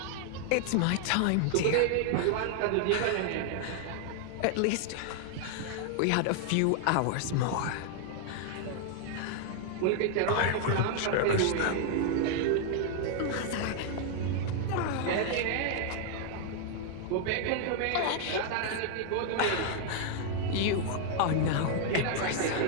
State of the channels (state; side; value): different; both; correlation 0.00